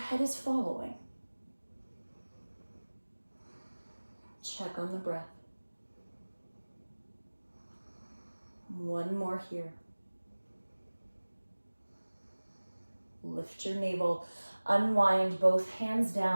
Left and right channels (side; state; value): both; inverted; correlation -1.00